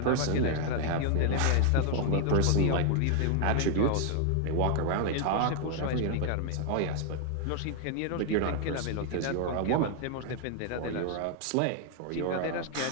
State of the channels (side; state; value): both; different; correlation 0.00